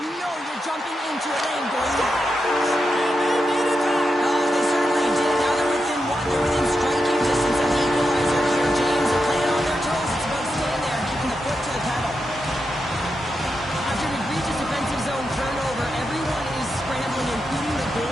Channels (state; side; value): normal; both; correlation 0.87